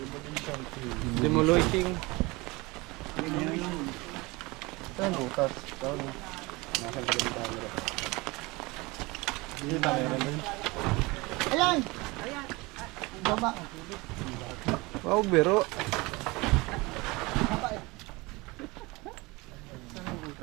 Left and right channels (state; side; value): quieter; left; 23.8 dB